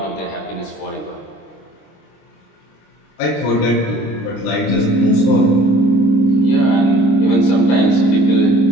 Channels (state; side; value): late; right; 26 ms